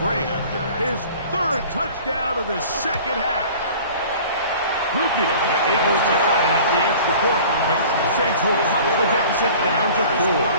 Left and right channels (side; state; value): both; inverted; correlation -0.45